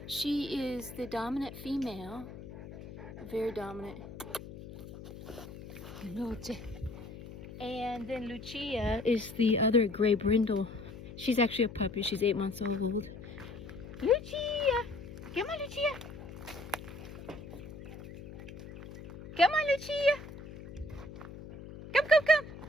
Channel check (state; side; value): noise; left; hum, 13 dB below the sound